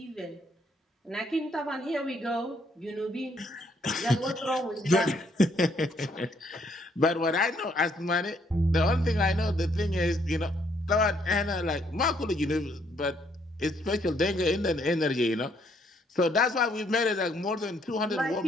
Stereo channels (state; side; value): normal; both; correlation 0.69